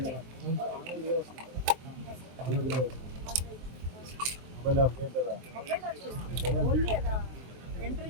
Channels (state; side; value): late; left; 23 ms